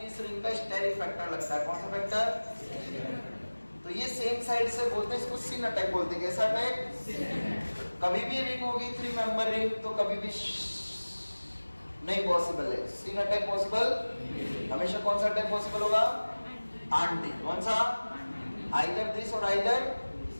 इस रिंग का स्टेरिक फैक्टर लगता है। कौन सा फैक्टर? तो ये सेम साइड से बोलते हैं, इसको सिन अटैक बोलते हैं। कैसा अटैक? कभी भी रिंग होगी 3 मेंबर रिंग तो कभी भी नहीं पॉसिबल है, सिन अटैक पॉसिबल हमेशा। कौन सा अटैक पॉसिबल होगा? आंटी। कौन सा? आइदर दिस और either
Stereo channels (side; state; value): both; inverted; correlation -1.00